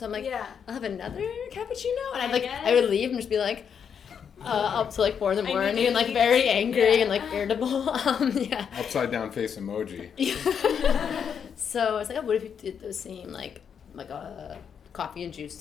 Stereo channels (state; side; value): quieter; right; 7.4 dB